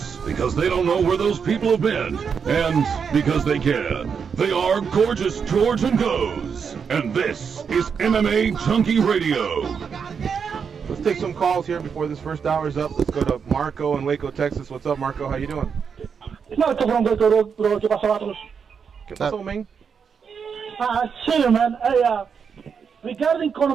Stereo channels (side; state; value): left; quieter; 6.4 dB